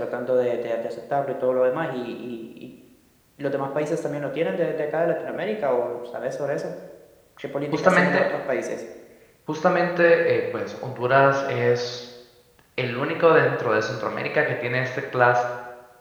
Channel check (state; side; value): identical; both; correlation 1.00